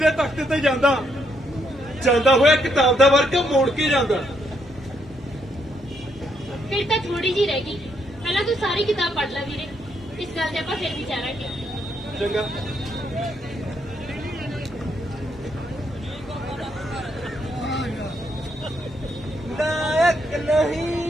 ਤਖਤ ਤੇ ਜਾਂਦਾ ਹੋਇਆ ਕਿਤਾਬ ਦਾ ਵਰਕ ਮੋੜ ਕੇ ਜਾਂਦਾ। ਫਿਰ ਤਾਂ ਥੋੜੀ ਜੀ ਰਹਿ ਗਈ। ਪਹਿਲਾਂ ਤੂੰ ਸਾਰੀ ਕਿਤਾਬ ਪੜ੍ਹ ਲੈ ਵੀਰੇ, ਇਸ ਗੱਲ ਤੇ ਆਪਾਂ ਫਿਰ ਵਿਚਾਰਾਂਗੇ। ਚੰਗਾ। नायक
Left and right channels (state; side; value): normal; both; correlation 0.76